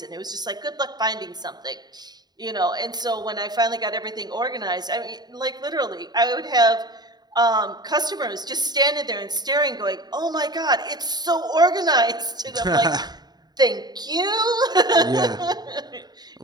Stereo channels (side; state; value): left; late; 0.20 ms